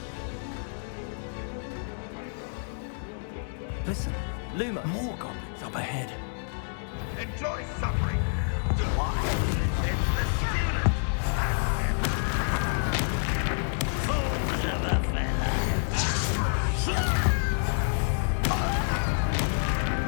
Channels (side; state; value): right; silent; digital silence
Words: Listen, more goblins up ahead. Enjoy suffering. Why? It's the student. Fools of a fella.